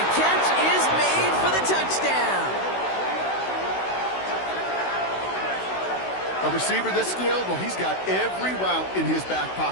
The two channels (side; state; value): right; late; 16 ms